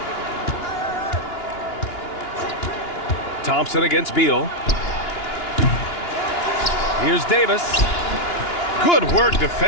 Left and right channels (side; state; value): right; late; 2.9 ms